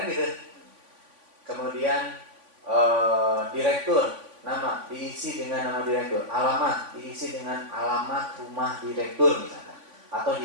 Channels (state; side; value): late; left; 3.5 ms